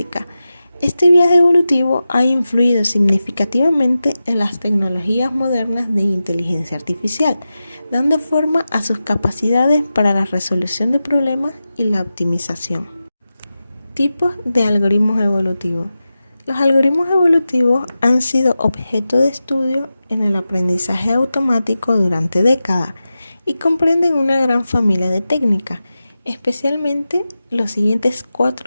Este viaje evolutivo ha influido significativamente en las tecnologías modernas de inteligencia artificial, dando forma a sus capacidades para la resolución de problemas y la optimización. Tipos de algoritmos evolutivos. Los algoritmos evolutivos han sido objeto de estudio en el aprendizaje automático durante décadas y comprenden una gran familia de técnicas, especialmente los siguientes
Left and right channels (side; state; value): both; inverted; correlation -0.93